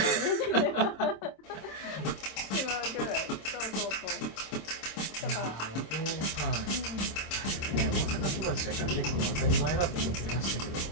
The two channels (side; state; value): right; late; 26 ms